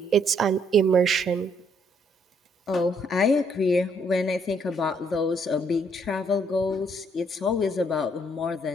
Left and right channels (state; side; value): normal; both; correlation 0.68